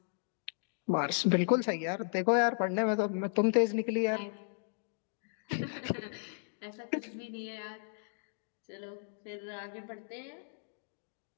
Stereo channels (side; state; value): right; silent; digital silence